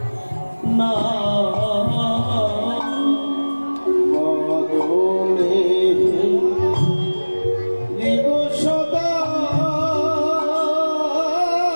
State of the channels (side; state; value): both; inverted; correlation -1.00